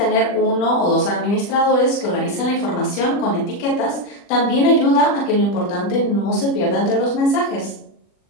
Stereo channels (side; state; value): right; late; 40 ms